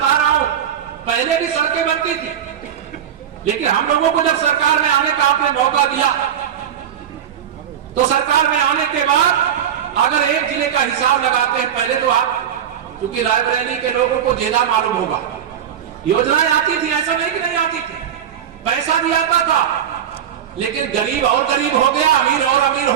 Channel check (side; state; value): left; quieter; 9.3 dB